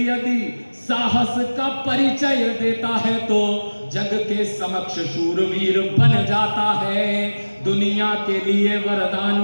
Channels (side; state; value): both; inverted; correlation -1.00